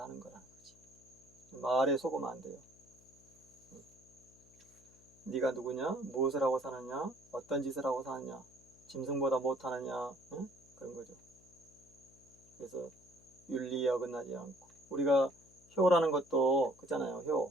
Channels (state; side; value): noise; left; hum, 27 dB below the sound